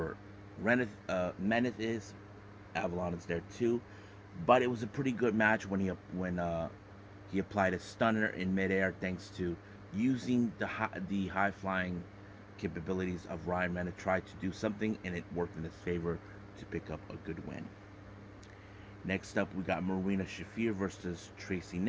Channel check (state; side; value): identical; both; correlation 1.00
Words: Mendez is, Avalon is there too. But it was a pretty good match when he applied a stunner in midair, thanks to using the high flying capabilities of Ryan Mendez. Tried to do something and it worked in his favor to pick up a good win. Next up, we got Marina Shafir versus Tracy